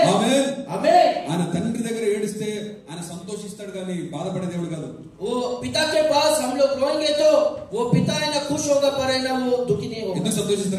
ఆమేన్. आमीन। ఆయన తండ్రి దగ్గర ఏడిస్తే ఆయన సంతోషిస్తాడు కానీ బాధపడే దేవుడు కాదు. वो पिता के पास हम लोग रोएंगे तो वो पिता है ना खुश होगा, पर है ना वो दुखी नहीं होगा। ఎందుకు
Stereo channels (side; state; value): both; identical; correlation 1.00